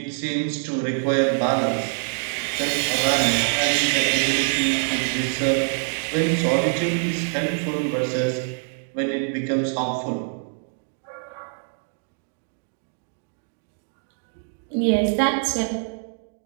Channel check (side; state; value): left; silent; 62 dB below the other